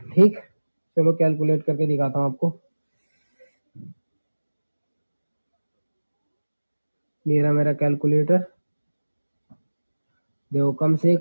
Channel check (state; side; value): inverted; both; correlation -1.00